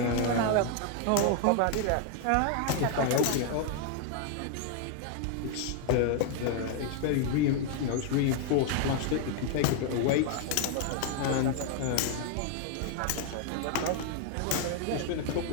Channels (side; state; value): both; different; correlation 0.00